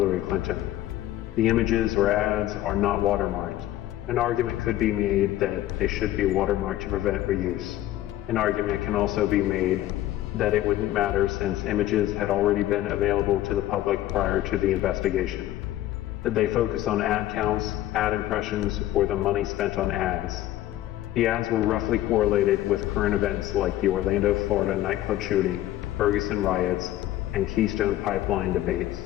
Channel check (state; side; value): quieter; right; 14.3 dB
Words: Clinton? The images or ads are not watermarked. An argument could be made that they should be watermarked to prevent reuse. An argument can also be made that it wouldn't matter since images had already been available to the public prior to the investigation. Did they focus on ad counts, ad impressions, or the money spent on ads? The ads were roughly correlated with current events like the Orlando, Florida nightclub shooting, Ferguson riots, and Keystone Pipeline debates.